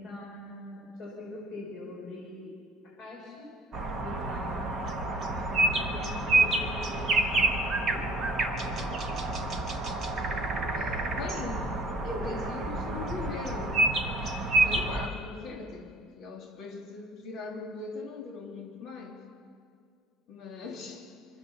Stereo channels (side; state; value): both; normal; correlation 0.53